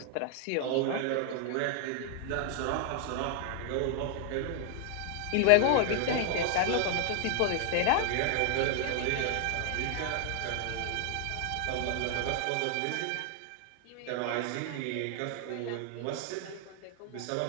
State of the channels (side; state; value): both; different; correlation 0.00